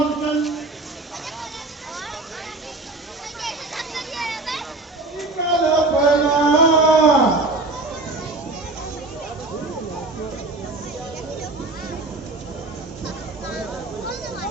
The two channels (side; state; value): left; quieter; 3.1 dB